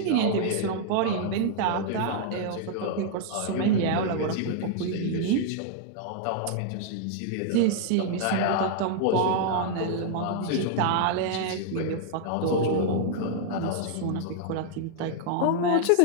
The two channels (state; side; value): different; both; correlation -0.01